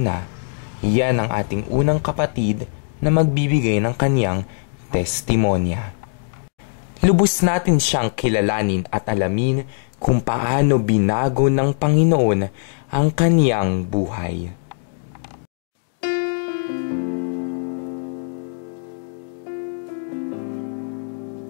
yan ang ating unang kapatid na magbibigay ng kanyang testimonya. Lubos natin siyang kilalanin at alamin kung paano binago ng Panginoon ang kaniyang buhay.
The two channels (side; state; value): right; silent; digital silence